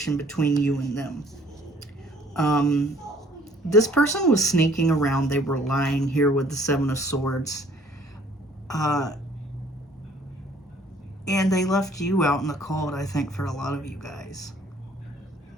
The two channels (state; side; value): normal; both; correlation 0.58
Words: between you and them. This person was sneaking around. They were lying here with the Seven of Swords. And they left you out in the cold, I think, for a lot of you guys.